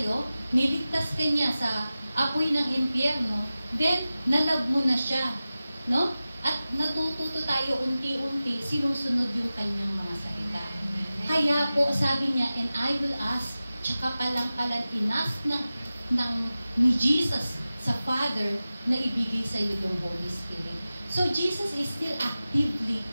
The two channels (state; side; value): inverted; both; correlation -0.95